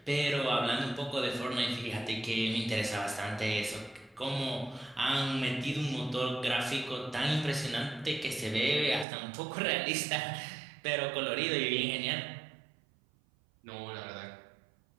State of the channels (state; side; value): drops out; left; at 9.1 s